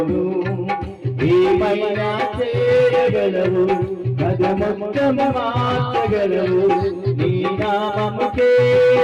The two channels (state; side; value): identical; both; correlation 1.00